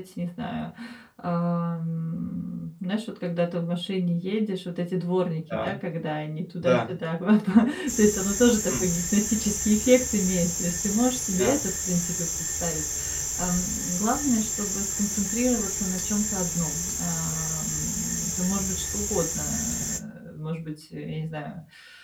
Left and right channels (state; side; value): identical; both; correlation 1.00